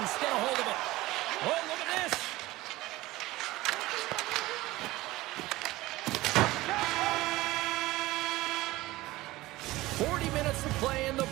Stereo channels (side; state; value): left; quieter; 18.5 dB